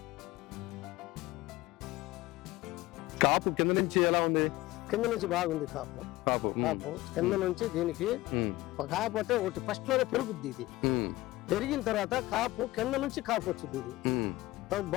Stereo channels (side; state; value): right; quieter; 18.5 dB